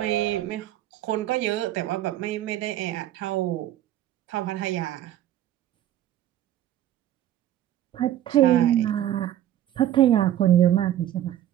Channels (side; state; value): left; quieter; 12.4 dB